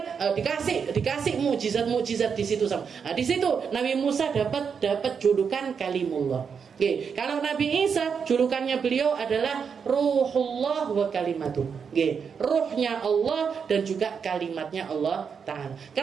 dikasih mukjizat di situ sama. Di situ Nabi Musa dapat julukan Kalimullah. Kalau Nabi Isa julukannya beliau adalah Ruhullah wa Kalimatuh. Ruhnya Allah dan juga kalimatnya Allah Ta'ala.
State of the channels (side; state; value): left; quieter; 6.4 dB